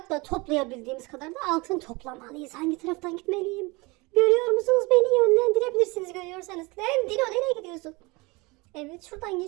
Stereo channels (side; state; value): left; quieter; 25.2 dB